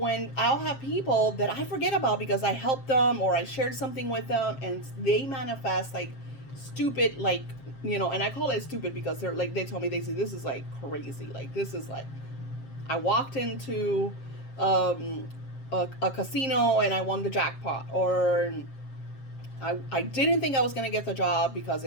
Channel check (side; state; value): right; late; 7.5 ms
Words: I'll have people that I forget about because I helped them or I shared something with them and they manifest like stupid, like, and I call it stupid because they're like, they tell me, they say, this is like crazy. Like, this is like, I walked into um, a casino and I won the jackpot, or I didn't think I was going to get the job because